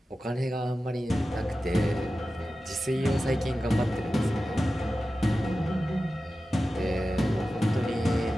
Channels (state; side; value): normal; both; correlation 0.94